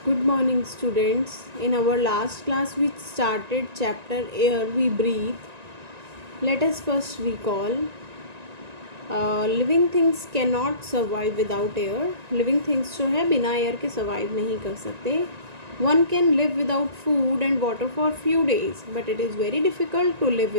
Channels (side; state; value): left; late; 1.9 ms